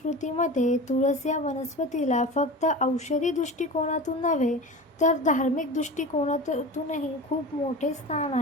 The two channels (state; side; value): normal; both; correlation 0.31